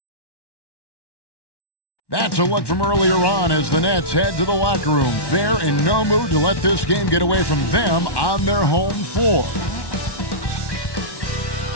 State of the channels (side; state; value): right; late; 1.1 ms